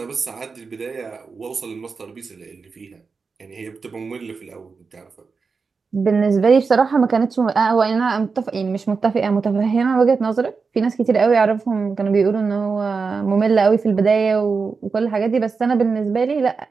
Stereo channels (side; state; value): left; quieter; 4.9 dB